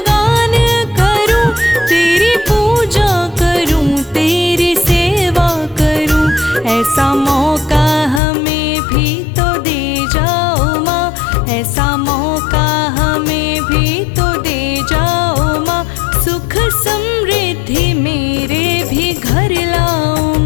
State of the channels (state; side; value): drops out; right; at 8.2 s